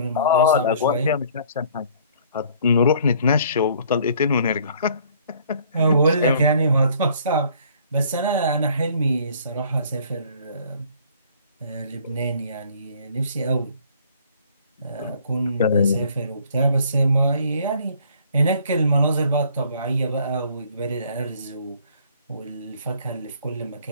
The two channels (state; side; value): inverted; both; correlation -0.57